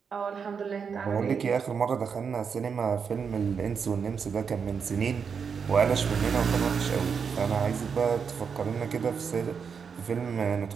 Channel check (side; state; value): left; quieter; 6.3 dB